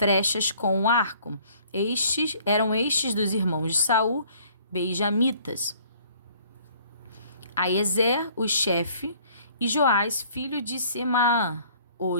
com o arco. Eram estes dos irmãos de Saul, benjamitas. Aiezer, o chefe, e Joás, filho de Semaá, o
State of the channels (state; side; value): inverted; both; correlation -0.57